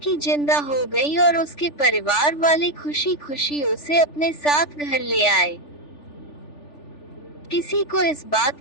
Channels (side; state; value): right; late; 3.4 ms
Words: जिंदा हो गई और उसके परिवार वाले खुशी खुशी उसे अपने साथ घर ले आए। किसी को इस